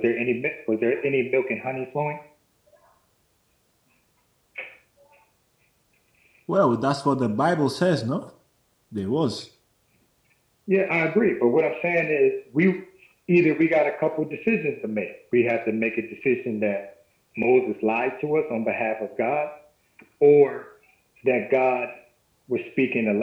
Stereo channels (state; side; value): identical; both; correlation 1.00